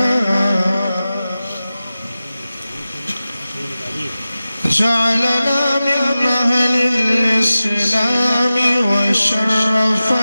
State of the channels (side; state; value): both; inverted; correlation -0.95